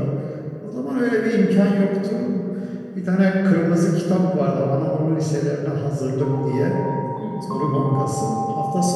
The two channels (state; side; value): identical; both; correlation 1.00